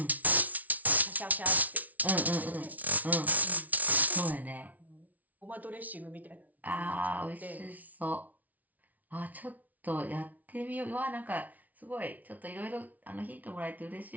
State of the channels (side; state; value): left; late; 0.074 ms